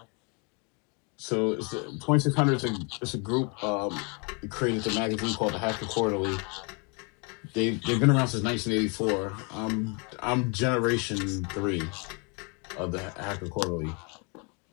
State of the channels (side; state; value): right; quieter; 33.6 dB